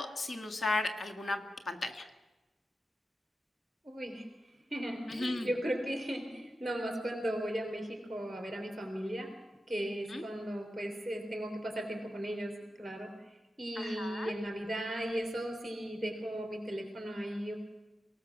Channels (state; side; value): normal; both; correlation 0.91